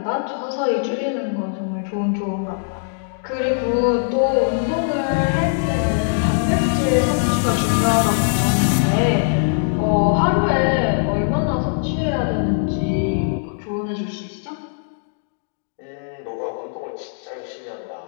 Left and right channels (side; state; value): right; silent; digital silence